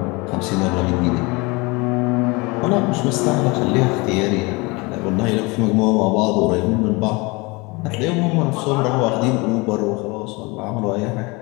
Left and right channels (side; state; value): right; quieter; 26.0 dB